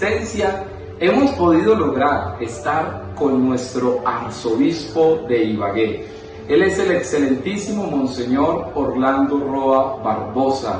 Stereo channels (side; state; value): both; identical; correlation 1.00